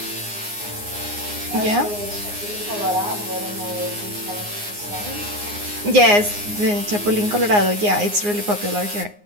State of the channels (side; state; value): left; late; 9.7 ms